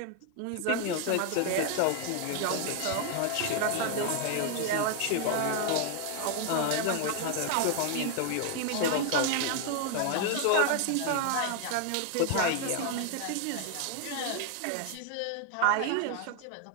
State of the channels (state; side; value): different; both; correlation 0.00